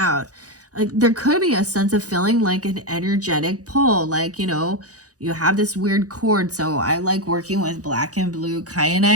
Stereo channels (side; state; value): left; late; 0.67 ms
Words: Like there could be a sense of feeling like an energetic pull, like, you know, you have this weird cord. So I like working with black and blue